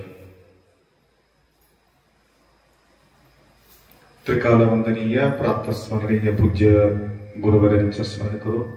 त्रिकालवंदनीय प्राप्त स्मरणीय पूज्य गुरुवरांचं स्मरण करू।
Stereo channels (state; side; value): identical; both; correlation 1.00